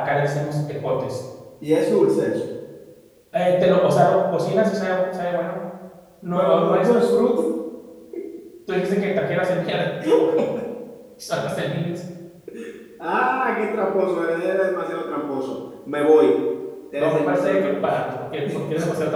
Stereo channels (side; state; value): both; identical; correlation 1.00